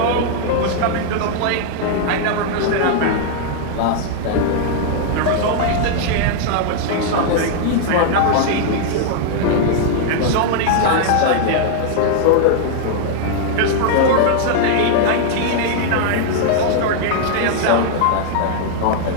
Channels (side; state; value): both; different; correlation -0.01